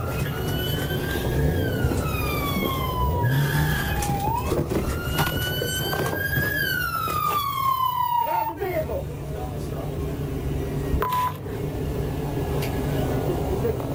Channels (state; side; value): identical; both; correlation 1.00